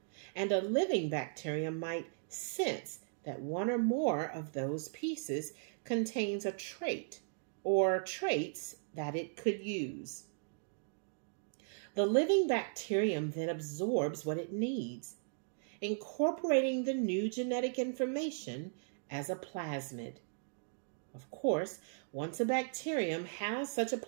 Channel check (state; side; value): silent; left; digital silence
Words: and a living bacterium might sense that one or more of those pieces contains a trait or traits that it could use. The living bacterium then absorbs what it needs, incorporating the new genetic information as a plasmid. Of course, once a bacterium has such a